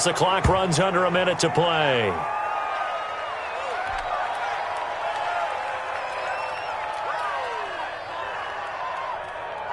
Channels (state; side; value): identical; both; correlation 1.00